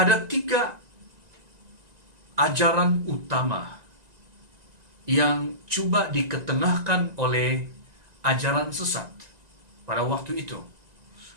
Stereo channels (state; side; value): late; left; 1.9 ms